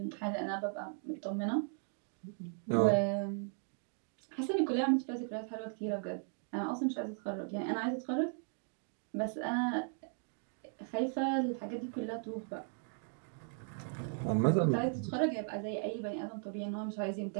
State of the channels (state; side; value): silent; left; 53 dB below the other